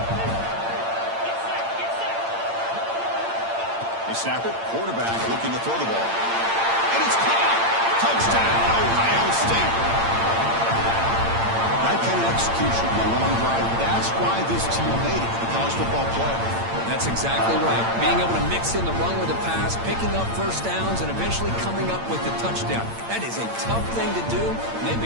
They snap it. Quarterback looking to throw the ball. And it's caught. Touchdown, Ohio State. That that kind of execution on a long drive, that's why this team made it to the college football playoff. That's exactly right. Being able to mix in the run with the pass, picking up first downs, and eventually coming up with the touchdown. That is a tough thing to do, and they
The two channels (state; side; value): late; left; 8.8 ms